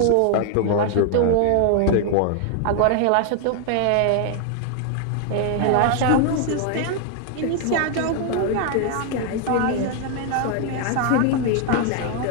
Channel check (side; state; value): both; different; correlation 0.00